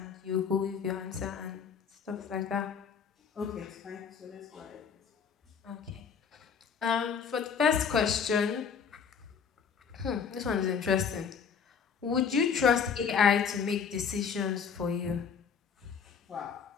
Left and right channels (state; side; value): quieter; right; 6.6 dB